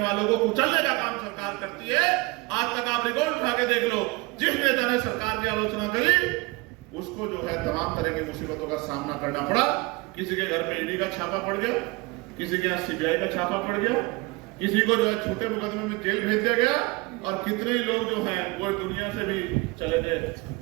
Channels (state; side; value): quieter; left; 24.6 dB